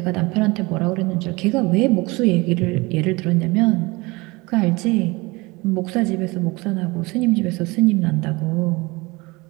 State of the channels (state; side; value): quieter; left; 23.9 dB